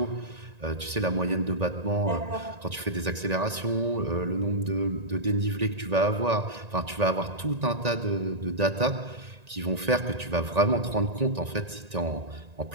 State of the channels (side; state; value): left; late; 1.9 ms